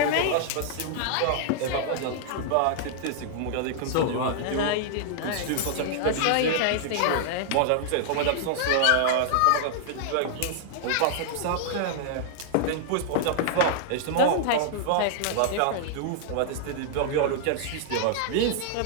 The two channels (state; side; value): different; both; correlation -0.01